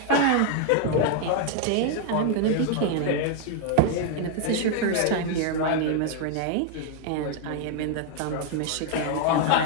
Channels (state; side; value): different; both; correlation 0.00